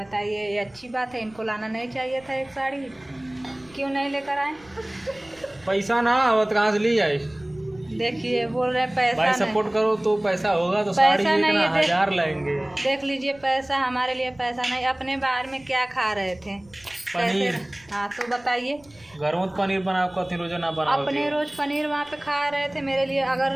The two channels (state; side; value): noise; right; rumble, 28 dB below the sound